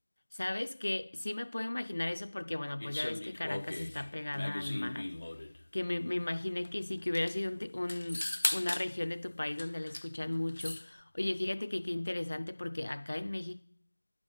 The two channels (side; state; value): both; inverted; correlation -1.00